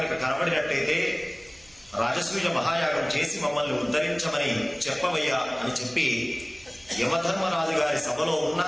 కనబడినట్టయితే రాజసూయ మహాయాగం చేసి మమ్మల్ని ఉద్ధరించమని చెప్పవయ్యా అని చెప్పి యమధర్మరాజు గారి సభలో ఉన్న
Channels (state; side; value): noise; right; rumble, 28 dB below the sound